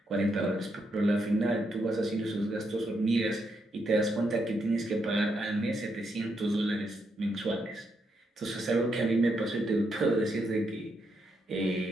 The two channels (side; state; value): both; normal; correlation 0.79